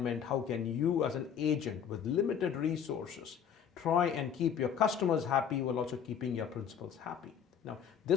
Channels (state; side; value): quieter; right; 8.0 dB